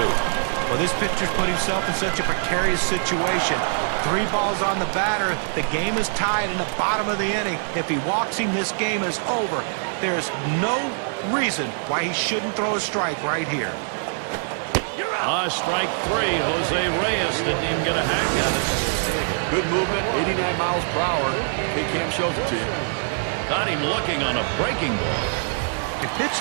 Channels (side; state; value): left; silent; 63 dB below the other